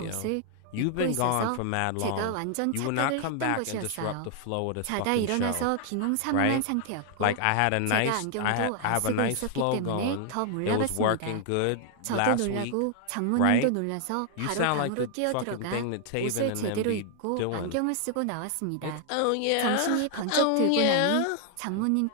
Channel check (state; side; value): different; both; correlation 0.00